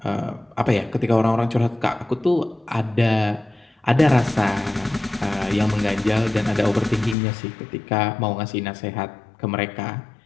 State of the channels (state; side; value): drops out; right; at 7.2 s